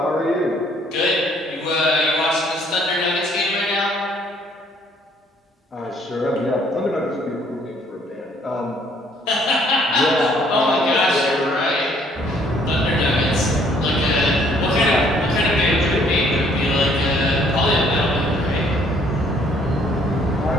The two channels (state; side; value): normal; both; correlation 0.63